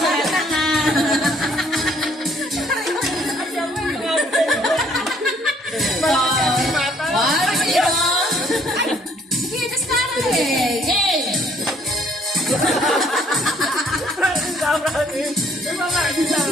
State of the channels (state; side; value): normal; both; correlation 0.62